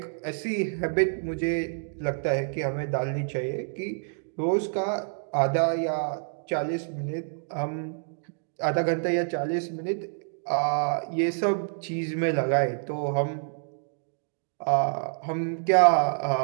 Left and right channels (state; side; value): silent; left; digital silence